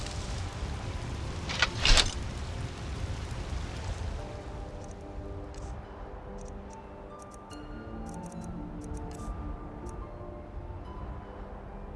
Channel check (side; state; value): both; identical; correlation 1.00